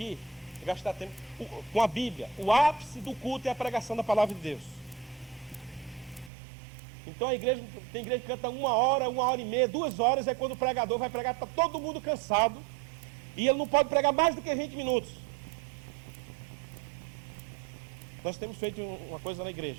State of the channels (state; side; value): drops out; left; at 6.3 s